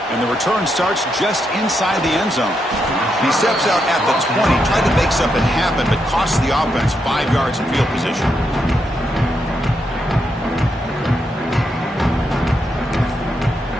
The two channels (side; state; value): both; normal; correlation 0.81